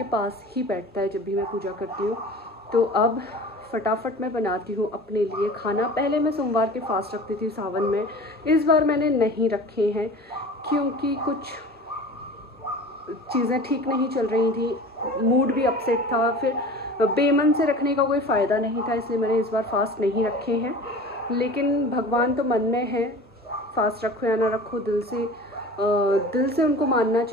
पास ही बैठता है जब भी मैं पूजा करती हूँ। तो अब फटाफट मैं बनाती हूँ अपने लिए खाना। पहले मैं सोमवार के फास्ट रखती थी सावन में, इस बार मैंने नहीं रखे हैं क्योंकि कुछ चीज़ें ठीक नहीं चल रही थी, मूड भी अपसेट था, फिर बेमन से रखने का कोई फ़ायदा नहीं था, इसलिए मैंने इस बार फास्ट नहीं रखे हैं। लेकिन भगवान तो मन में है, फास्ट रखो या ना रखो, दिल से उनको मानना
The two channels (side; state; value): both; normal; correlation 0.39